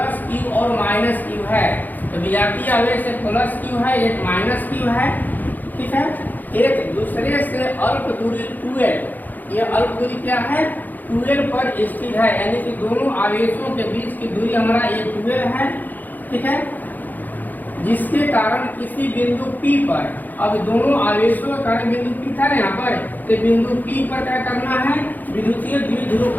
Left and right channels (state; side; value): late; right; 0.084 ms